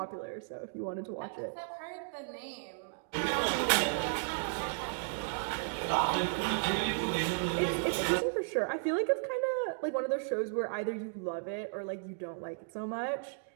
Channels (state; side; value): silent; left; digital silence